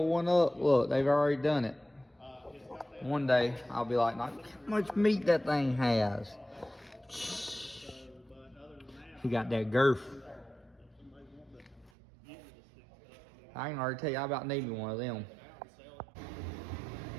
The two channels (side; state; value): left; drops out; at 11.9 s